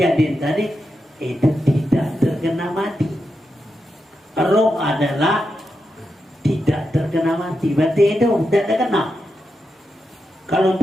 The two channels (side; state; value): both; normal; correlation 0.87